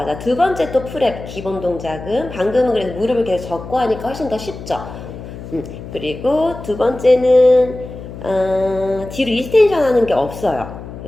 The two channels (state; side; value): noise; left; hum, 12 dB below the sound